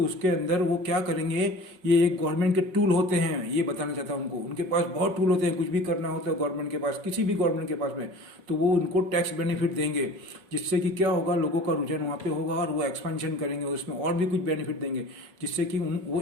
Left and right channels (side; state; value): left; late; 5.4 ms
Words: उसके अंदर वो क्या करेंगे, ये एक गवर्नमेंट के टूल होते हैं, ये बताना चाहता हूँ उनको। उनके पास बहुत टूल होते हैं, कुछ भी करना होता है गवर्नमेंट के पास, किसी भी गवर्नमेंट के पास में, तो वो उनको टैक्स बेनिफिट देंगे, जिससे कि क्या होगा, लोगों का रुझान वहाँ पे होगा और वो एक्सपेंशन करेंगे, उसमें और भी कुछ बेनिफिट देंगे, जिससे कि वो